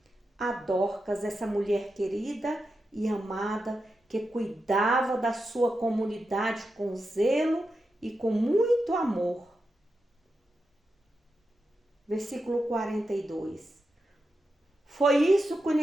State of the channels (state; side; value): normal; both; correlation 0.88